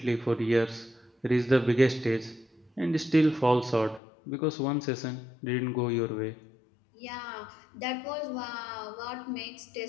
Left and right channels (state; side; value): drops out; right; at 4.0 s